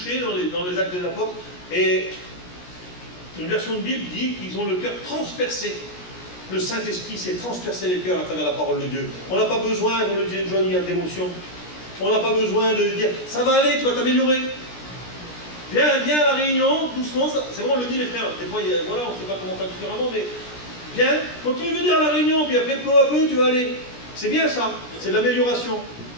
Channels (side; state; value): right; late; 17 ms